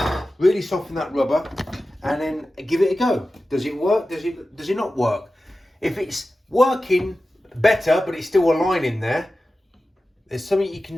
really soften that rubber, and then give it a go. Does it work? Does it not work? If it's working better, but it's still a line in there, there's something you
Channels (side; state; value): both; normal; correlation 0.94